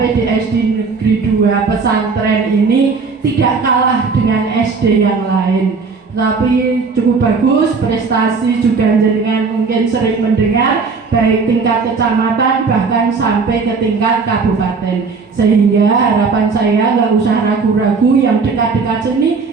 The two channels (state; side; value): quieter; left; 4.8 dB